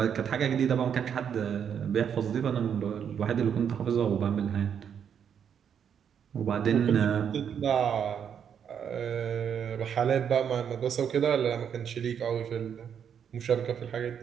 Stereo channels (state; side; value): quieter; left; 8.1 dB